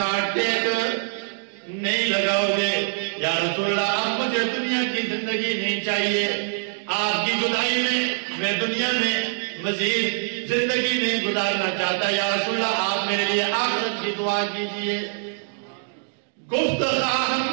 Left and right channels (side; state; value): left; silent; digital silence